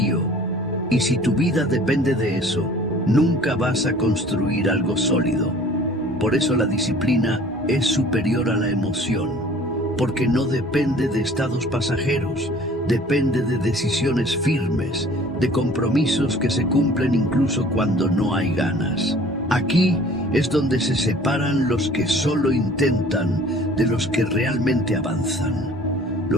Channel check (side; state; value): both; normal; correlation 0.49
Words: y si tu vida depende de eso, nunca vas a construir algo sólido. Por eso la disciplina es superior a la emoción. Porque no depende de estados pasajeros, depende de decisiones firmes, de compromisos que se cumplen incluso cuando no hay ganas. Aquí es donde se separan los que solo intentan de los que realmente avanzan.